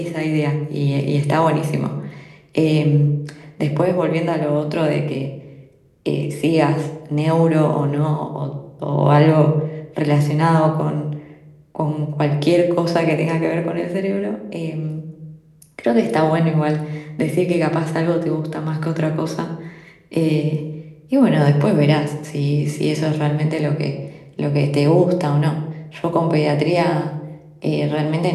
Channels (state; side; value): identical; both; correlation 1.00